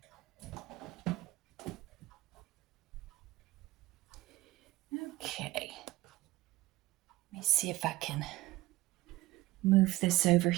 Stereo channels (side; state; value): left; quieter; 17.7 dB